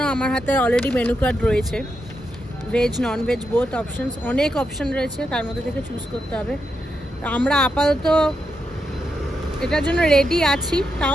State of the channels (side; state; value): both; normal; correlation 0.84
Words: আমার হাতে অলরেডি মেনু কার্ড রয়েছে, veg non veg both options, অনেক অপশান রয়েছে, তার মধ্যে থেকে চুজ করতে হবে। আমরা আপাতত এটার জন্য রেডি আছি,